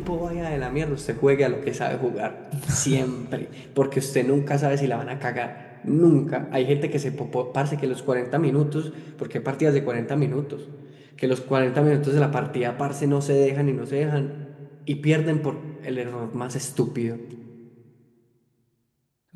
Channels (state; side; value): identical; both; correlation 1.00